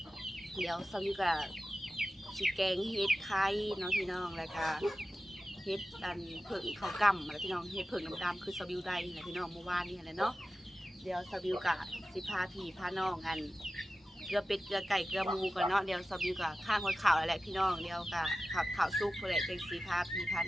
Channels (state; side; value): normal; both; correlation 0.94